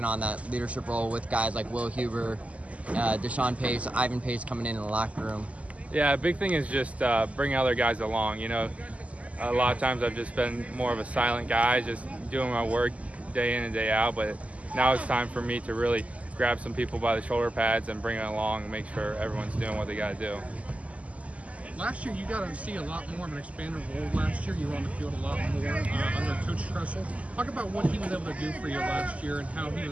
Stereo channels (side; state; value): left; late; 0.067 ms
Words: on that leadership role with guys like Will Huber, Deshaun Pace, Ivan Pace coming in the locker room. Yeah, a big thing is just bringing other guys along. A lot of times I've just been more of a silent guy, just doing my work day in and day out, but now it's time for me to really grab some people by the shoulder pads and bring it along and make sure everyone's doing what they got to do. Last year, you got to see a lot more of an expanded role last year. You were on the field a lot more under Coach Tressel. Talk about what he was able to do for you last year and how he